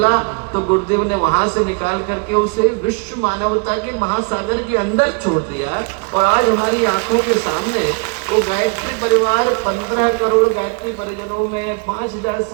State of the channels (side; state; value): left; quieter; 33.5 dB